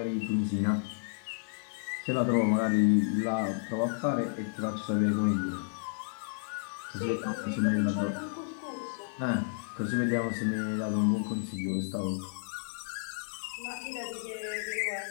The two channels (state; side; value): silent; right; 57 dB below the other